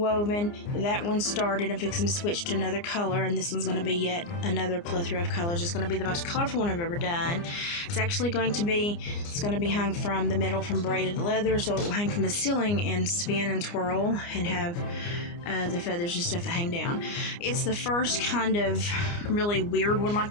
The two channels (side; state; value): right; late; 29 ms